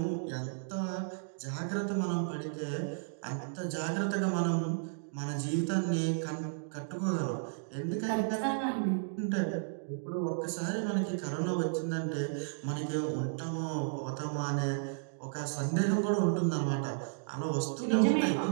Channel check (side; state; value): left; silent; digital silence